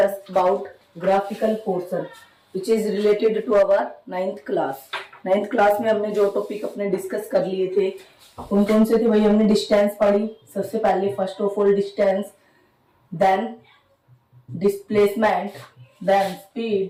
about graphical portion, which is related to our ninth class. Ninth class में हमने जो topic अपने discuss कर लिए थे कौन कौन से थे भाई? हमने डिस्टेंस पढ़ी सबसे पहले, first of all distance, then displacement, then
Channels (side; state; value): both; identical; correlation 1.00